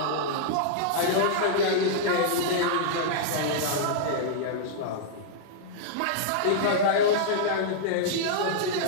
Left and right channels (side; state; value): both; different; correlation -0.02